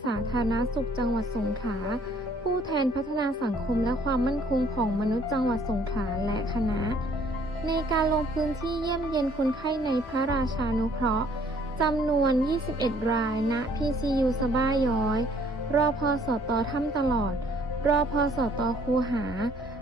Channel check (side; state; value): both; normal; correlation 0.61